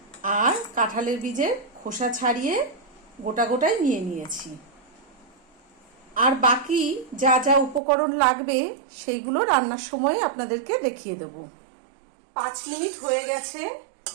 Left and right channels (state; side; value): drops out; left; at 7.8 s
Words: আর কাঁঠালের বীজের খোসা ছাড়িয়ে গোটা গোটাই নিয়ে নিয়েছি। আর বাকি যা যা উপকরণ লাগবে সেইগুলো রান্নার সময় আপনাদেরকে দেখিয়ে দেব। 5 মিনিট হয়ে গেছে।